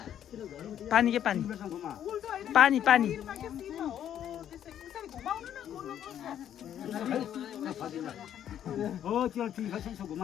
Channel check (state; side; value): quieter; right; 10.2 dB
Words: पानी के पानी पानी पानी हो त्यो ठिक छ यसो